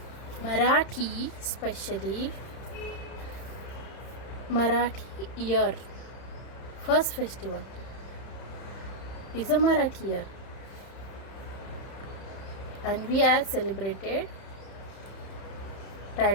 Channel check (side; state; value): right; late; 31 ms